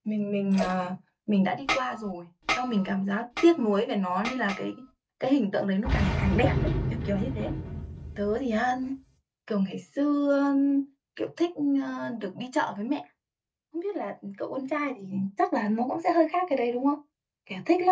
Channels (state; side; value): identical; both; correlation 1.00